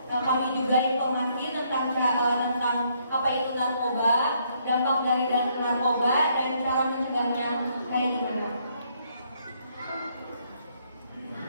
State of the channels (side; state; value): both; inverted; correlation -0.70